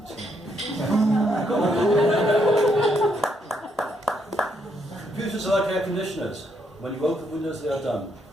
Computers are like air conditioners. When you open Windows, they are done.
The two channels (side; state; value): both; normal; correlation 0.75